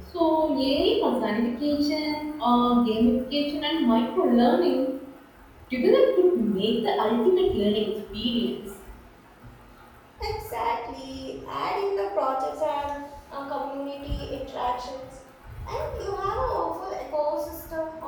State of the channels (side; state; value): both; identical; correlation 1.00